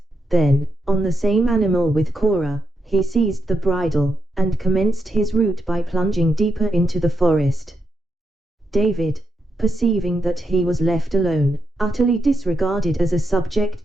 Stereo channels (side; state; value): both; normal; correlation 0.83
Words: then, on the same animal with Cora, he seized the bridle, and commenced his route by plunging deeper into the forest. David, perceiving that he was left alone, utterly disregarded as a